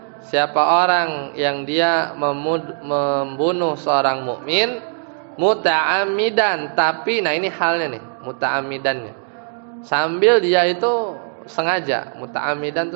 siapa orang yang dia membunuh seorang mukmin muta'ammidan, tapi nah ini halnya nih muta'ammidannya sambil dia itu sengaja, muta'ammidan itu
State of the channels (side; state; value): left; silent; digital silence